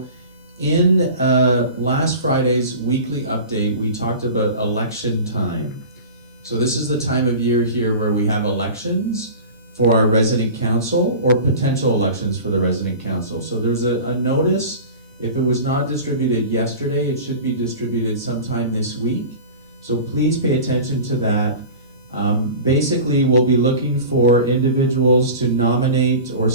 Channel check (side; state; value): both; inverted; correlation -0.36